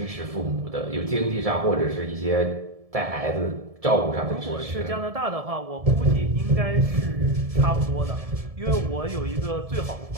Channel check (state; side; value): late; left; 1.7 ms